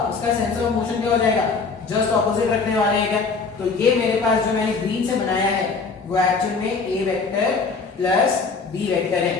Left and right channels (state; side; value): quieter; right; 4.6 dB